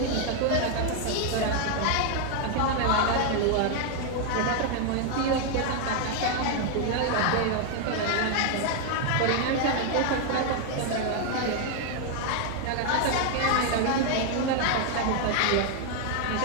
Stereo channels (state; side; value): different; both; correlation 0.00